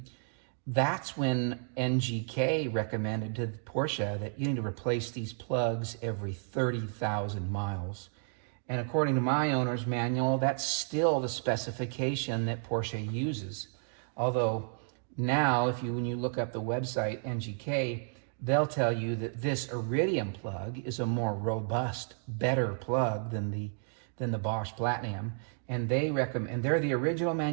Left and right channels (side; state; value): left; silent; 56 dB below the other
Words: that's when NGK recommended to Porsche that you need to replace these plugs every 30,000 miles. And according to my owner's manual, that's still the specification that Porsche uses. Although now, when you look up the website NGK, they'll tell you that this Iridium plug is a more robust, better plug than the Bosch Platinum. And they recommend, and they're the original